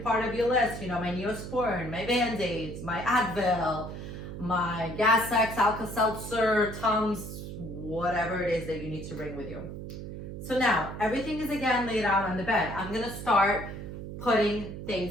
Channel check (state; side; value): noise; right; hum, 9 dB below the sound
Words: of your list. You know, my Neosporin, my Band-Aids, my Advil, my Gas X, Alka-Seltzer, Tums, whatever it is that you need to bring with you. So now, everything is again laid out on the bed. I'm gonna start putting